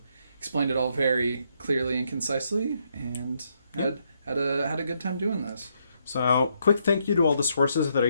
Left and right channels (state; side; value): inverted; both; correlation -0.76